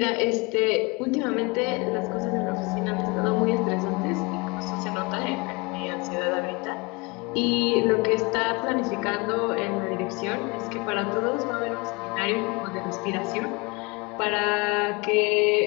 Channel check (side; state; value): right; quieter; 27.0 dB